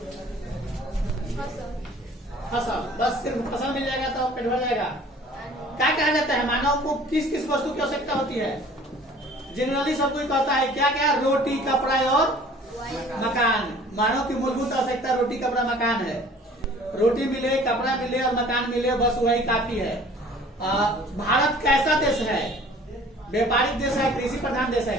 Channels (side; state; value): both; normal; correlation 0.50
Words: फसल। बस सिर्फ फसल मिल जाएगा तो पेट भर जाएगा? क्या कहा जाता है मानव को किस किस वस्तु की आवश्यकता होती है? जनरली सब कोई कहता है क्या क्या? रोटी, कपड़ा और मकान। मानव की मूलभूत आवश्यकता रोटी, कपड़ा, मकान है। रोटी मिले, कपड़ा मिले और मकान मिले, बस वही काफी है। भारत कैसा देश है? व्यापारिक देश है, कृषि प्रधान देश है?